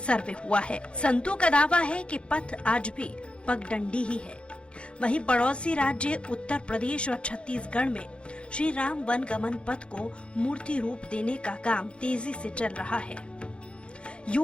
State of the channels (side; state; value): right; late; 0.057 ms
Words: हुआ है। संतों का दावा है कि पथ आज भी पगडंडी ही है। वहीं पड़ोसी राज्य उत्तर प्रदेश और छत्तीसगढ़ में श्री राम वन गमन पथ को मूर्ति रूप देने का काम तेजी से चल रहा है।